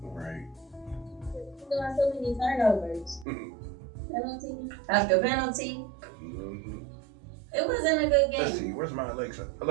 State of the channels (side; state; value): left; drops out; at 3.2 s